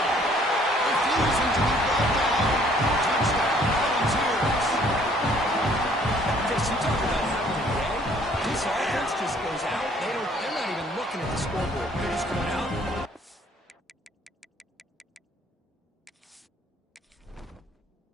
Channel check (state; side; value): normal; both; correlation 0.60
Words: Refusing to be brought down. Touchdown, Volunteers. Chris, you talk about having a day. This offense just goes out. They're not even looking at the scoreboard. They're just going out.